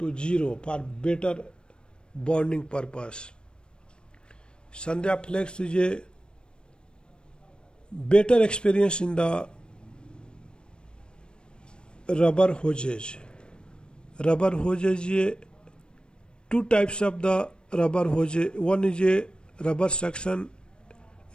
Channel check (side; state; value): right; late; 0.053 ms